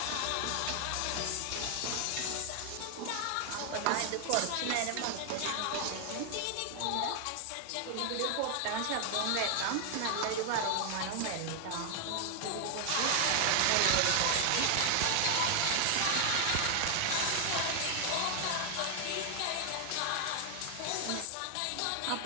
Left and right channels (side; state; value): both; different; correlation 0.00